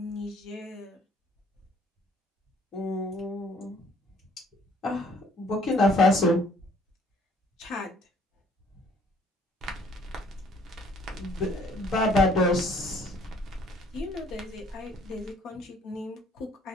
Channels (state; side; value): normal; both; correlation 0.60